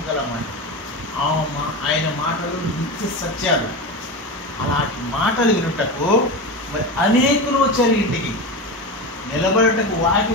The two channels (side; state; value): both; normal; correlation 0.22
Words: ఆయన మాటలు నిత్య సత్యాలు. అలాంటి మాటలు వినుటకు మరి అనేకులు వచ్చారు ఇంటికి. నిలబడటకు